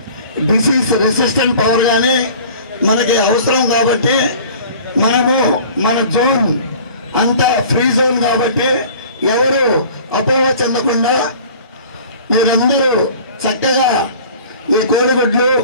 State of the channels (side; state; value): both; inverted; correlation -0.46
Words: డిసీజ్ రెసిస్టెంట్ పవర్ కానీ మనకి అవసరం కాబట్టి మనము మన జోన్ అంతా ఫ్రీ జోన్ కాబట్టి ఎవరు అపోహ చెందకుండా మీరందరూ చక్కగా ఈ కోడిగుడ్లు